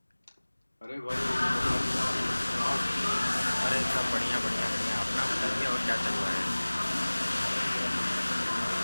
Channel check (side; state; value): both; inverted; correlation -1.00